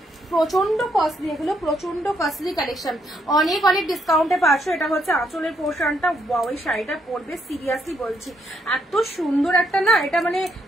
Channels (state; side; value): normal; both; correlation 0.74